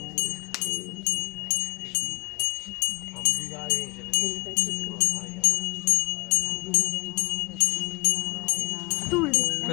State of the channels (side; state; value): right; quieter; 25.5 dB